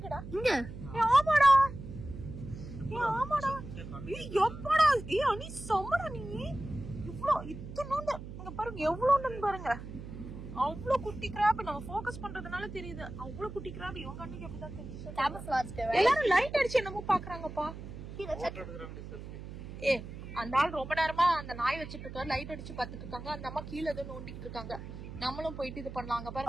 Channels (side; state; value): right; noise; hum, 11 dB below the sound